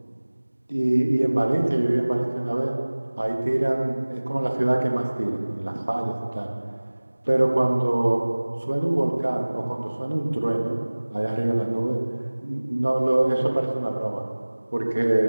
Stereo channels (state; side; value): inverted; both; correlation -1.00